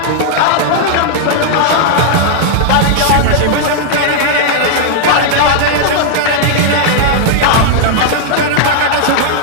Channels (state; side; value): different; both; correlation 0.00